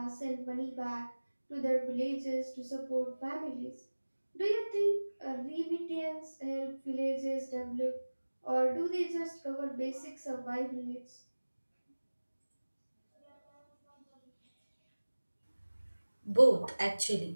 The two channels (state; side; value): inverted; both; correlation -1.00